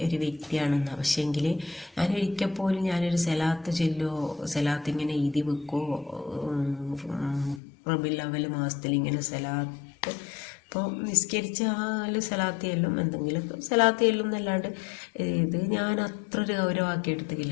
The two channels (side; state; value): right; drops out; at 7.6 s